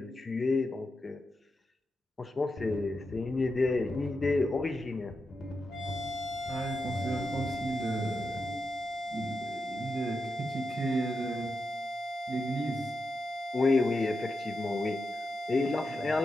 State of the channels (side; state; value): both; normal; correlation 0.87